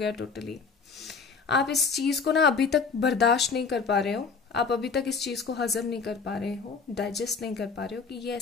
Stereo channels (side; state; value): right; quieter; 5.1 dB